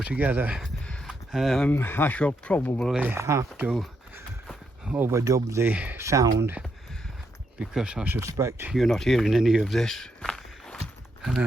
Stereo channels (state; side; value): normal; both; correlation 0.79